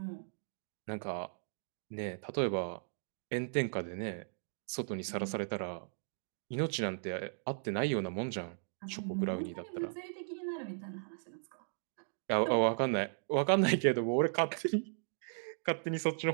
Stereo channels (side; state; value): left; silent; digital silence